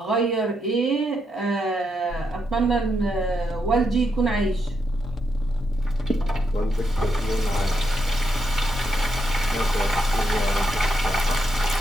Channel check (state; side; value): normal; both; correlation 0.81